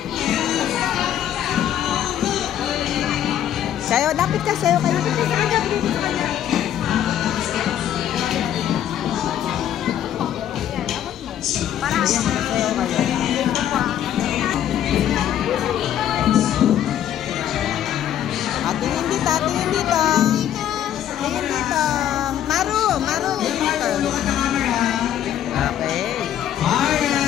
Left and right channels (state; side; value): quieter; right; 10.7 dB